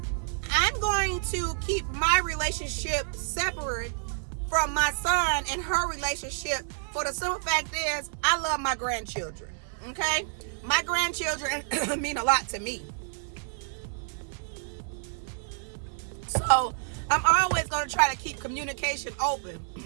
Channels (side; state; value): left; silent; 59 dB below the other